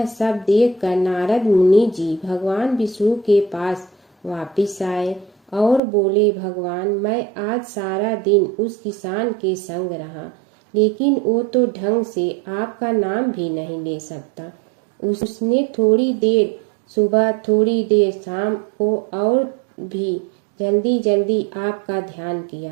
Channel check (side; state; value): left; drops out; at 5.8 s